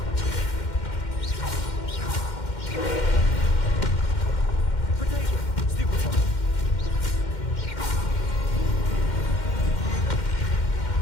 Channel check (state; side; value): late; right; 2.1 ms